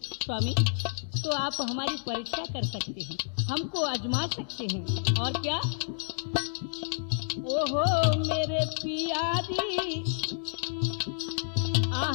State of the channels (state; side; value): silent; right; digital silence